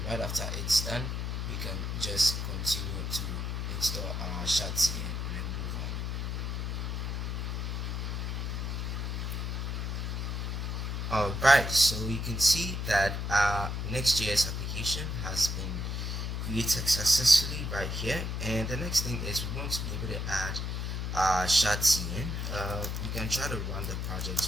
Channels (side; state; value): left; noise; hum, 2 dB below the sound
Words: right after it's done, we can just continue to install our Shatsi and then move on. Alright, so you can see that our Next.js application has been created successfully right here, and the next thing is we want to be able to add Shatsi in. We can try to run the